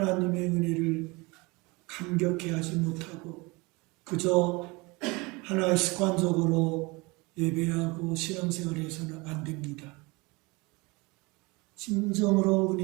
은혜를 감격해 하지 못하고 그저 하나의 습관적으로 예배하고 신앙생활을 해서는 안 됩니다. 진정으로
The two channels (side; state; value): left; quieter; 25.5 dB